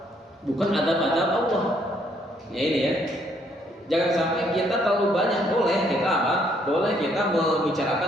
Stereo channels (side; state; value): both; normal; correlation 0.69